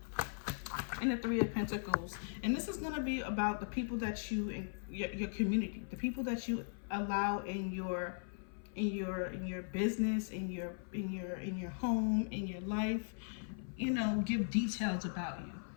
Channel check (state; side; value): silent; right; 52 dB below the other